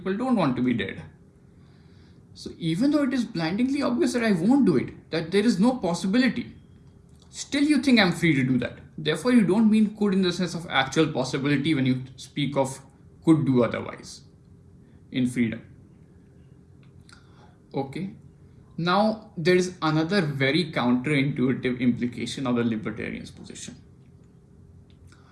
don't want to be dead. So even though it is blindingly obvious that I won't do it, that there is no possibility, still you think I'm free to do that. Therefore, you don't mean could in the sense of actual possibility when you speak of could do otherwise in freedom. Okay. Now, there is another very counterintuitive implication of the libertarian's position.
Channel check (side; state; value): both; identical; correlation 1.00